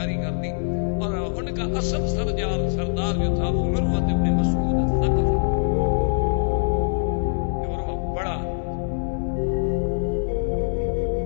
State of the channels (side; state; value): right; silent; digital silence